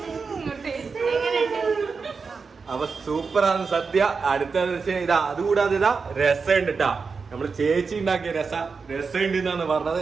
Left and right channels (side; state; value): left; quieter; 5.0 dB